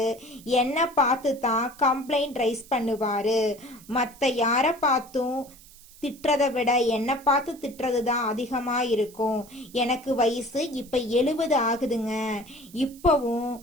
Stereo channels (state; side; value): noise; right; hiss, 22 dB below the sound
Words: என்னை பார்த்து தான் கம்ப்ளைண்ட் ரைஸ் பண்ணுவார். மற்ற யாரை பார்த்தும் திட்டுறதை விட என்னை பார்த்து திட்டுறது தான் அதிகமாக இருக்கும். எனக்கு வயசு இப்போ 70 ஆகுதுங்க. இப்போவும்